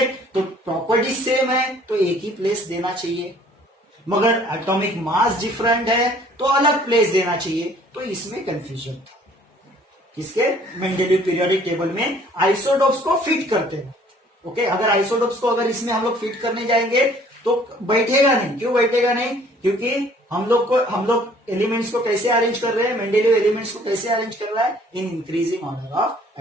तो प्रॉपर्टी सेम है तो एक ही प्लेस देना चाहिए, मगर एटॉमिक मास डिफरेंट है तो अलग प्लेस देना चाहिए। तो इसमें कंफ्यूजन था। किसके? मेंडेलीव पीरियोडिक टेबल में आइसोटोप्स को फिट करते हैं। ओके, अगर आइसोटोप्स को अगर इसमें हम लोग फिट करने जाएंगे तो बैठेगा नहीं। क्यों बैठेगा नहीं? क्योंकि हम लोग एलिमेंट्स को कैसे अरेंज कर रहे हैं? मेंडेलीव एलिमेंट्स को कैसे अरेंज कर रहा है? In increasing order of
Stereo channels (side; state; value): both; normal; correlation 0.57